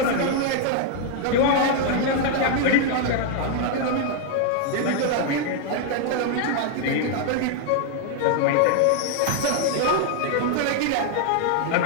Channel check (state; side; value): different; both; correlation 0.00